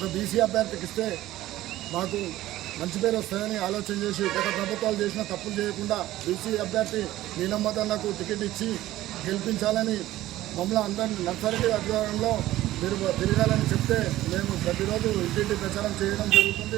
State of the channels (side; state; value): left; quieter; 15.3 dB